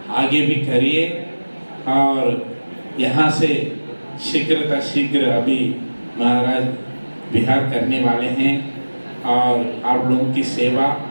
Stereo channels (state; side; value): inverted; both; correlation -1.00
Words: आगे भी करिए और यहाँ से शीघ्र अभी महाराज विहार करने वाले हैं और आप लोगों की सेवा